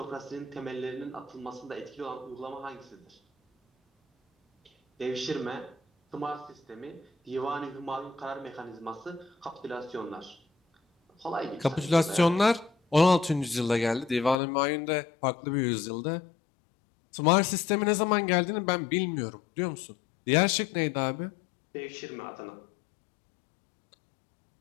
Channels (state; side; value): drops out; right; at 14.4 s